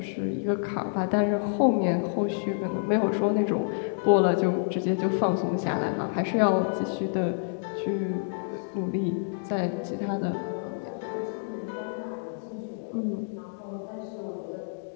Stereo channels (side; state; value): right; silent; digital silence